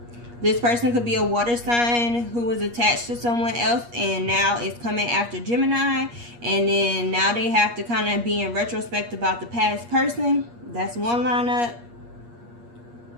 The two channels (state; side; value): late; left; 8.4 ms